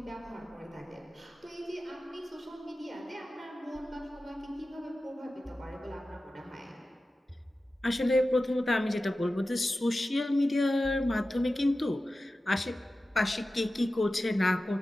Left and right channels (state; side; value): normal; both; correlation 0.95